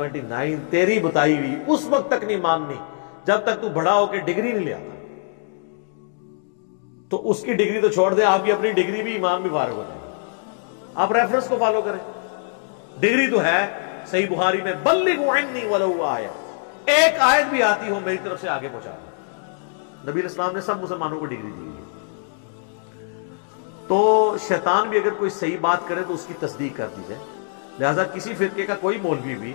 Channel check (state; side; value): silent; right; digital silence